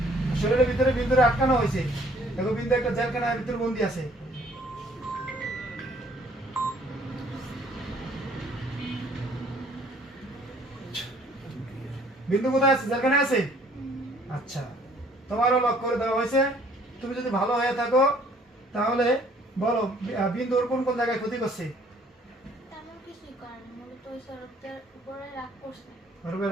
শরীরের ভিতরে বিন্দুরে আটকানো হয়েছে। দেখো বিন্দু একটা জেলখানার ভিতরে বন্দি আছে। বিন্দু কোথায় আছে? জেলখানায় আছে। আচ্ছা, তোমারও লক করে দেওয়া হয়েছে। তুমি যদি ভালো হয়ে থাকো তাহলে বলো বিন্দুর কোন কোন জায়গায় ক্ষতি করছে? তেমন কিছুই করেনি, মূলত ওই স্যারদের উপরে রাগ করছে। ওর উপরে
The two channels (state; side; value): normal; both; correlation 0.59